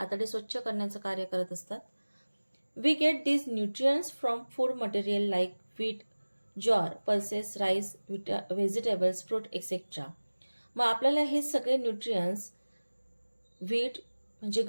स्वच्छ करण्याचं कार्य करत असतात. We get these nutrients from food material like wheat, jowar, pulses, rice, vegetables, fruit etcetera. मग आपल्याला हे सगळे न्यूट्रियंट्स व्हीट म्हणजे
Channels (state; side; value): inverted; both; correlation -1.00